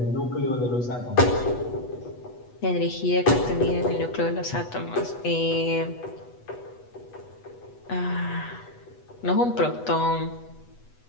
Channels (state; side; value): late; right; 8.2 ms